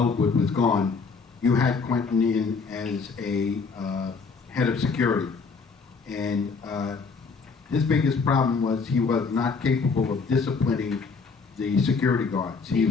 was gone, you had Quentin in as a head of security. And his biggest problem was he was not capable of disciplining the security guards. He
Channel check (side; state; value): right; quieter; 4.8 dB